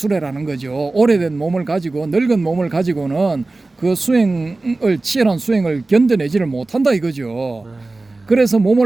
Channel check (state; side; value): quieter; left; 3.2 dB